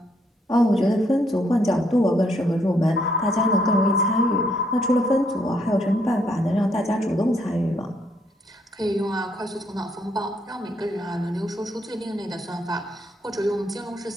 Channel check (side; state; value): both; normal; correlation 0.72